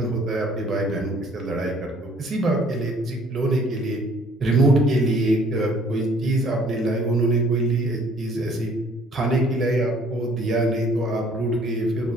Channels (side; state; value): both; normal; correlation 0.58